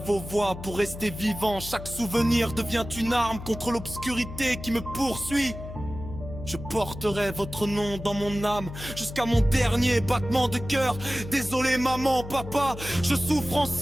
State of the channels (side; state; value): left; noise; hum, 11 dB below the sound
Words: vos voix pour rester vivant. Chaque souvenir devient une arme contre l'obscurité qui me poursuit. Je porterai votre nom dans mon âme jusqu'à mon dernier battement de cœur. Désolé maman, papa, je souffre en